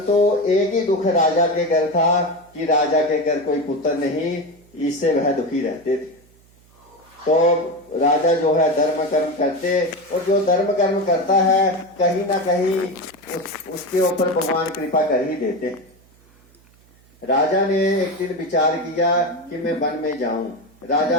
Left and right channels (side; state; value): right; noise; hum, 30 dB below the sound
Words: एक ही दुख राजा के घर था कि राजा के घर कोई पुत्र नहीं, इससे वह दुखी रहते थे। तो राजा जो है धर्म कर्म करते, और जो धर्म कर्म करता है कहीं ना कहीं उसके ऊपर भगवान कृपा कर ही देते। राजा ने एक दिन विचार किया कि मैं वन में जाऊं।